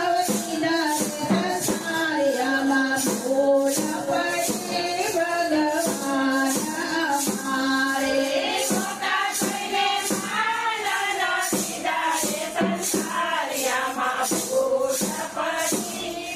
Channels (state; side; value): identical; both; correlation 1.00